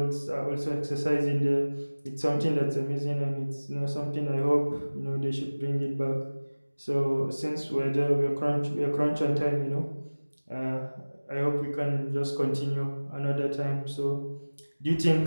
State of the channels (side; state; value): both; inverted; correlation -1.00